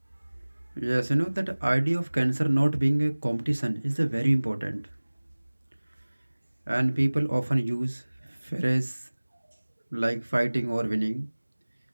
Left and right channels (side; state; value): both; inverted; correlation -1.00